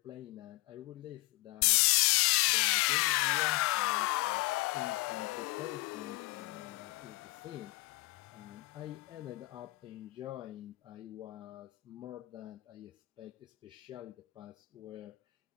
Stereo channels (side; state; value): right; quieter; 22.7 dB